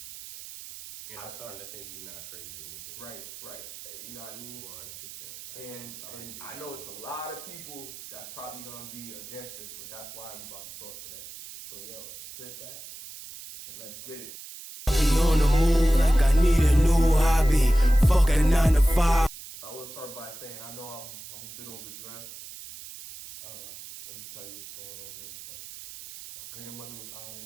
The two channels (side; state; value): right; noise; hiss, 14 dB below the sound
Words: And I'm starting to think he's not crazy either. Right. You know what I mean? 100%. And I know it's a lot of people that's probably going to be against it, but that's why I'm about to talk today. So, yo, sit back and let's get it. On the move like I need a new hobby. Fuck a 9 to 5. I will start by saying I know I'm a bit overdressed. Let me tell you what's going on here. So, my grandmother was honored.